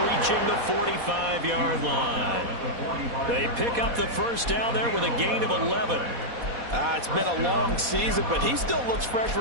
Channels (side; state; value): left; late; 4.1 ms